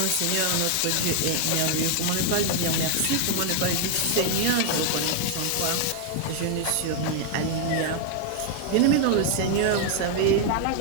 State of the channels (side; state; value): both; different; correlation 0.00